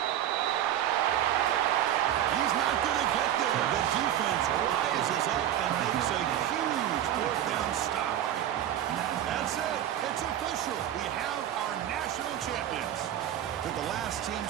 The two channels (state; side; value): quieter; left; 11.4 dB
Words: He's not going to get there. The defense rises up and makes a huge 4th down stop. That's it. It's official. We have our national champions. They're the last team